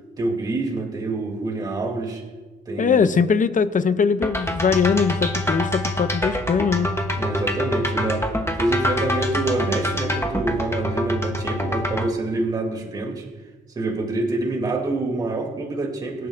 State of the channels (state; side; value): normal; both; correlation 0.62